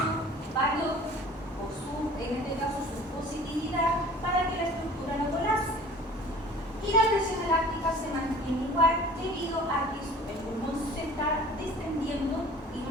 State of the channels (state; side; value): normal; both; correlation 0.47